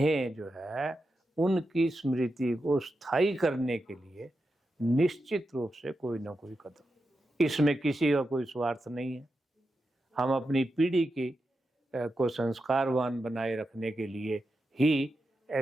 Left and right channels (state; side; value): normal; both; correlation 0.89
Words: जो है उनकी स्मृति को स्थायी करने के लिए निश्चित रूप से कोई ना कोई कदम, इसमें किसी का कोई स्वार्थ नहीं है। हम अपनी पीढ़ी की को संस्कारवान बनाए रखने के लिए ही